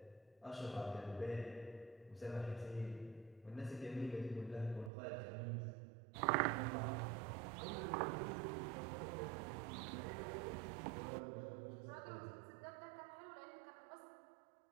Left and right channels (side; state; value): left; drops out; at 4.9 s